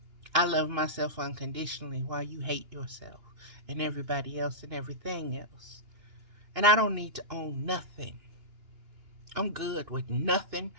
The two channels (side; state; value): left; late; 2.9 ms